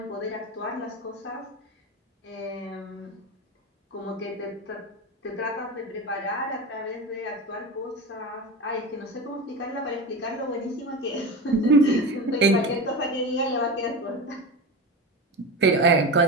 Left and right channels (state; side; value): normal; both; correlation 0.24